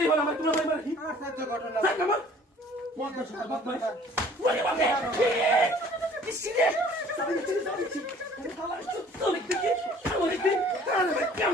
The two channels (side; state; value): both; normal; correlation 0.52